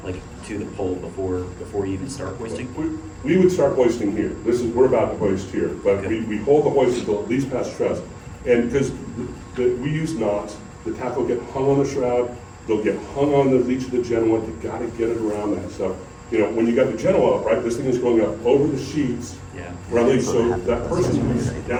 the pole before you even start hoisting? We would start hoisting here. We're about to hoist here, but we hold the hoist until at least past truss. And because we use knots, the tack will get hung on the shroud, they'll get hung on the leech of the Genoa, you gotta get it around that stuff. You know, when you got the Genoa up, right, this thing is going up over the sheets, Yeah. right, so that person who's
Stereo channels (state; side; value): identical; both; correlation 1.00